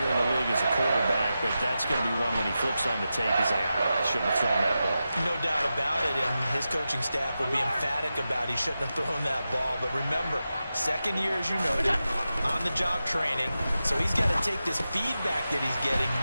in the league as a quarterback, but that's going to be one when he flips on the tape, he's like, I shouldn't have thrown that ball. No doubt about it, and his coaching staff will be emphatic about he shouldn't have thrown that ball. But remember, second year, as you noted, on-the-job training, so he's got to take this feedback that he's getting,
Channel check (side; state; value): both; inverted; correlation -0.91